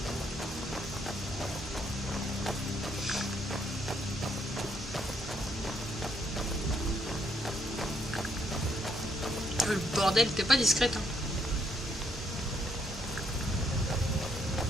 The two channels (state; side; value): normal; both; correlation 0.71